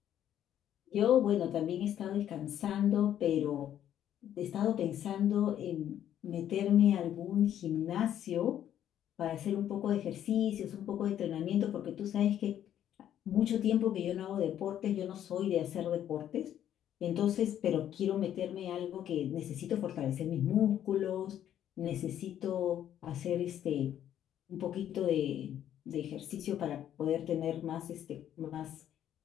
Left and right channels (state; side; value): quieter; right; 10.7 dB